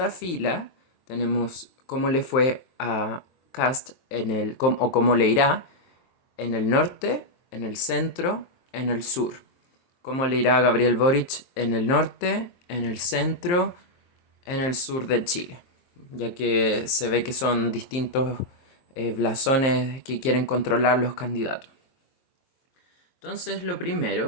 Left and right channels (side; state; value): right; late; 23 ms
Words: fila tenemos cómo le fue a Kast o cómo le irá en el norte, en el centro, en el sur. Cómo le irá a Gabriel Boric en el norte, en el centro, en el sur de Chile, ya que se ve que son distintos blasones que quieren controlar los candidatos. Entonces, lo